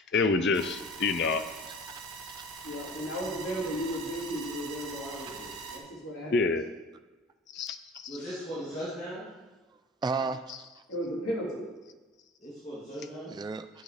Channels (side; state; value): both; normal; correlation 0.41